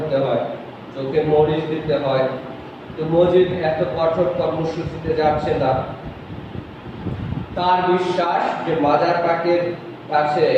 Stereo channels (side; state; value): both; identical; correlation 1.00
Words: হয়, চোখে মরিচ দিতে হয়। তো মজিদ এত কঠোর কর্মসূচিতে যাচ্ছে না। তার বিশ্বাস যে মাজার পাকের কাছে